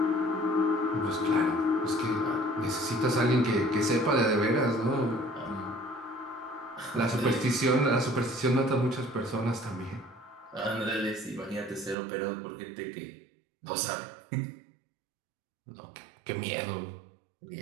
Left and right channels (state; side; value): drops out; left; at 12.0 s